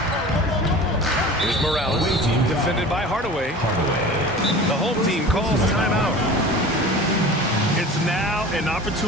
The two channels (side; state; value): both; normal; correlation 0.39